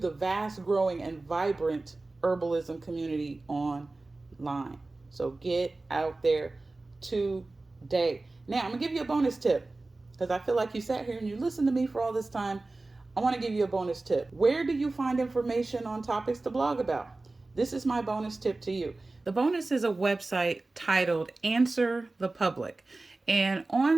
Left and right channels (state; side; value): quieter; left; 3.2 dB